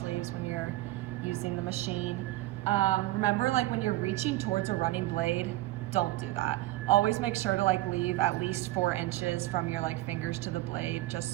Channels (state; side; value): quieter; left; 17.6 dB